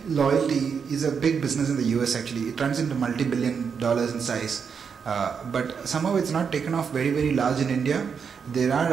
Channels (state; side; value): quieter; left; 6.4 dB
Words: loyalty is a big business in the US actually. It runs into multi-billion dollars in size, but somehow it's not taken off very, very large in India. There are